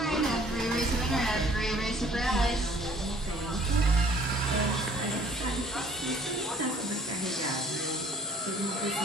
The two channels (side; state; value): both; normal; correlation 0.56